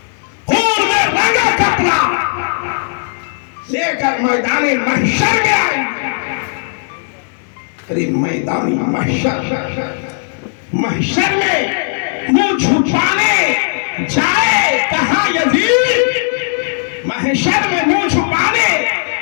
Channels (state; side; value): silent; right; digital silence